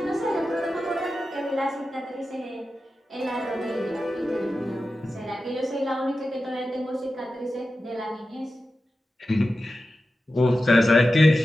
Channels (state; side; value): normal; both; correlation 0.92